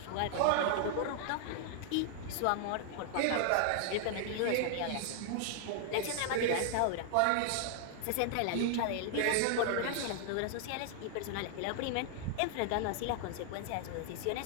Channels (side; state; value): both; different; correlation 0.00